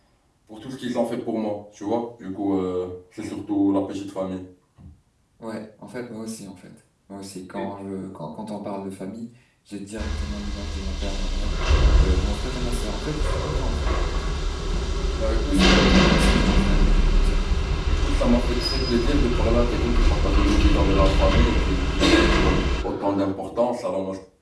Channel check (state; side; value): identical; both; correlation 1.00